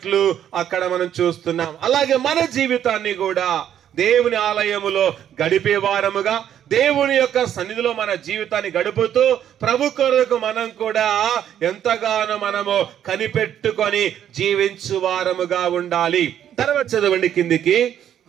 అక్కడ మనం చూస్తున్నాం. అలాగే మన జీవితాన్ని కూడా దేవుని ఆలయములో గడిపే వారముగా, దేవుని యొక్క సన్నిధిలో మన జీవితాన్ని గడుపుతూ ప్రభు కొరకు మనం కూడా ఎంతగానో మనము కనిపెట్టుకొని జీవించు వారముగా ఉండాలి. తర్వాత చదవండి కిందికి.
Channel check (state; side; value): quieter; left; 10.2 dB